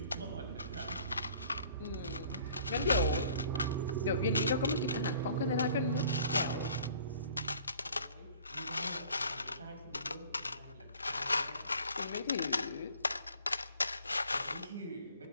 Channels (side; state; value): both; inverted; correlation -0.52